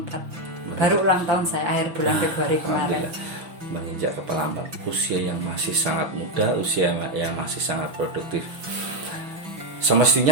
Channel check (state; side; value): late; left; 6.3 ms